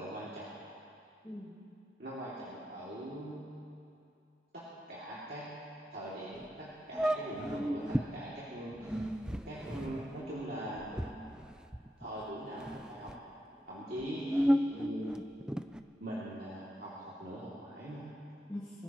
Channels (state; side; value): normal; both; correlation 0.84